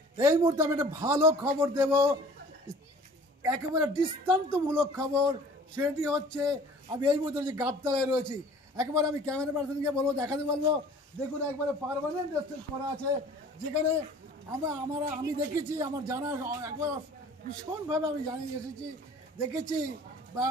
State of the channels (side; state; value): both; normal; correlation 0.48